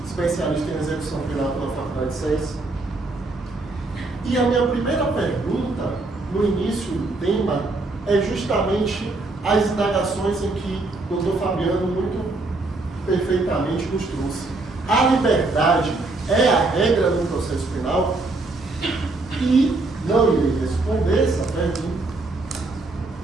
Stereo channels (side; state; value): left; quieter; 3.2 dB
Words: especialista em execução penal pela Faculdade de Ciências. E a minha primeira pergunta, no início do tema, é justamente as indagações em que o Dr. Fabiano muito perfeitamente nos trouxe. A liberdade é a regra no processo penal? E não irei responder essa pergunta,